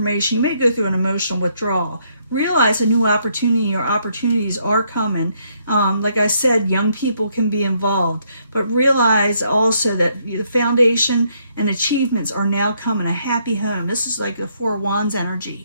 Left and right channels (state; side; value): inverted; both; correlation -0.72